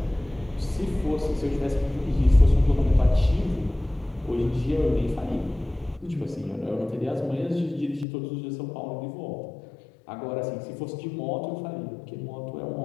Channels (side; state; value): right; drops out; at 8.1 s